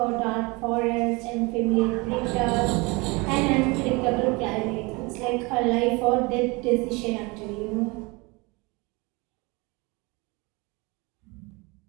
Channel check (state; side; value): quieter; left; 26.4 dB